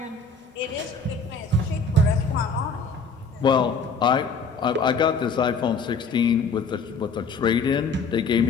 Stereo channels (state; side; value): quieter; right; 4.2 dB